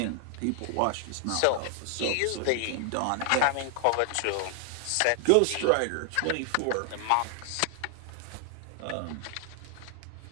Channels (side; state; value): both; different; correlation 0.00